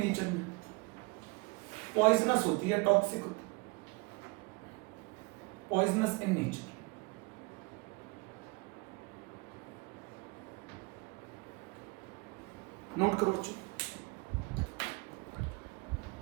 में पॉइजनस होती है, टॉक्सिक होती है, पॉइजनस इन नेचर। नोट करो बच्चों।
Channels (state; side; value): quieter; left; 27.2 dB